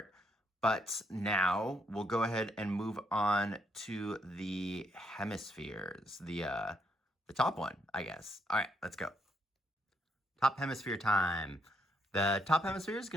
But now we'll go ahead and move on to the hemispheres, the top one, I guess. All right, let's go. Top hemisphere time. The top hemisphere is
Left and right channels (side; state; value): both; normal; correlation 0.75